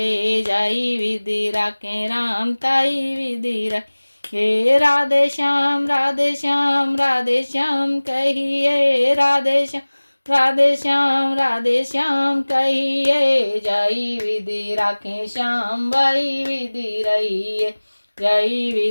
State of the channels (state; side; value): inverted; both; correlation -1.00